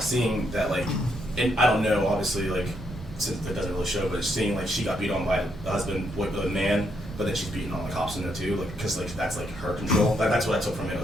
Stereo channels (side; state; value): both; normal; correlation 0.76